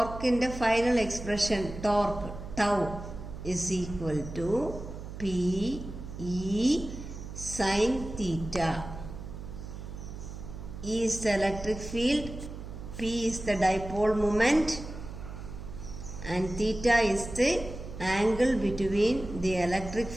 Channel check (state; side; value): noise; right; hum, 10 dB below the sound